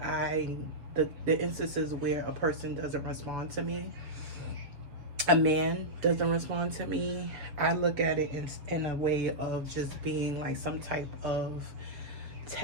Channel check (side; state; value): left; late; 7.3 ms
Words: the instances where a person doesn't respond to me, a man doesn't respond to me, I look at it in a way of just being like some type of